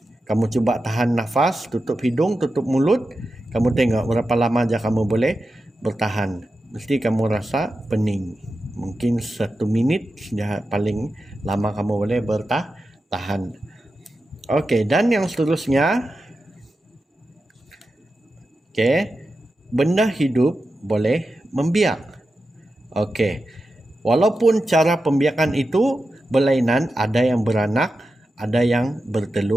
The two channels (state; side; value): normal; both; correlation 0.91